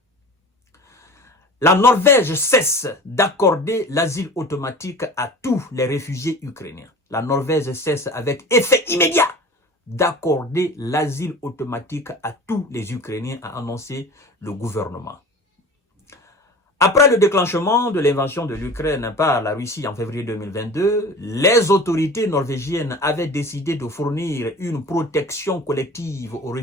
La Norvège cesse d'accorder l'asile automatique à tous les réfugiés ukrainiens. La Norvège cesse avec effet immédiat d'accorder l'asile automatique à tous les Ukrainiens, a annoncé le gouvernement. Après le déclenchement de l'invasion de l'Ukraine par la Russie en février 2022, les autorités norvégiennes avaient décidé de fournir une protection collective aux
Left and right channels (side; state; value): both; normal; correlation 0.38